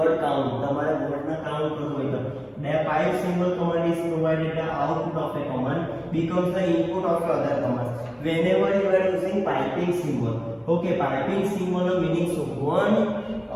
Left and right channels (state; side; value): identical; both; correlation 1.00